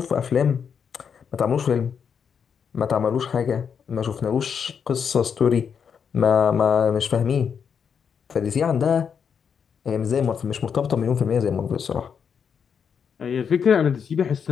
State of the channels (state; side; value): quieter; right; 7.0 dB